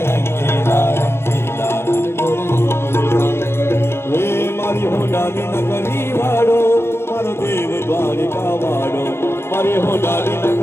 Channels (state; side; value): late; right; 0.12 ms